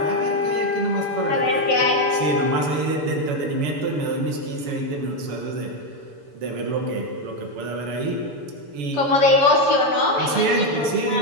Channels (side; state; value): left; late; 6.9 ms